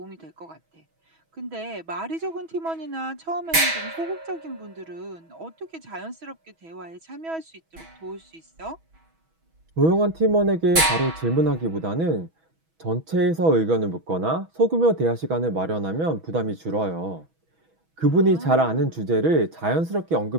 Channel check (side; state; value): left; late; 6.2 ms